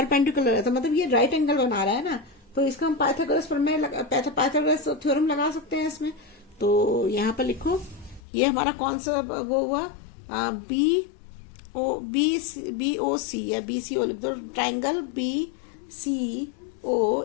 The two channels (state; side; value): drops out; right; at 8.2 s